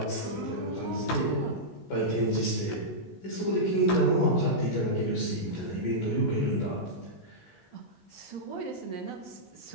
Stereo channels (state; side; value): late; right; 17 ms